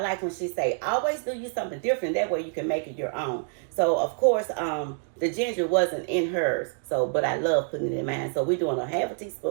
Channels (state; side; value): silent; left; 56 dB below the other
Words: when she say, always do you something different. That way you can make it your own. So, of course, the ginger wasn't in hers. So, but I love putting it in mine. So we're doing 1/2